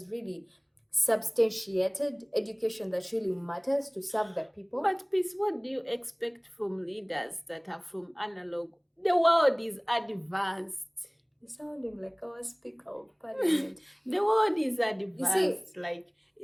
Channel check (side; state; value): both; identical; correlation 1.00